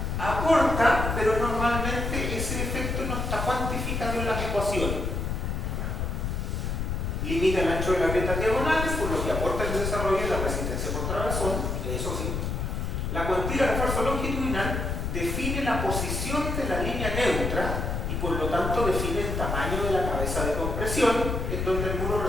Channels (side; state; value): left; noise; rumble, 2 dB below the sound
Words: Aporta, pero normalmente ese efecto no está cuantificado en las ecuaciones. Limita el ancho de las grietas diagonales, por lo que aporta el desarrollo de la resistencia por trabazón, eso sí. La cuantía de refuerzo longitudinal define la posición de la línea neutra y por lo tanto define el tamaño de la cabeza de compresión en donde el muro